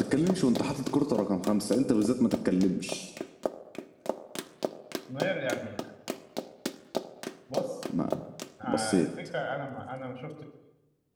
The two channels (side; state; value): both; identical; correlation 1.00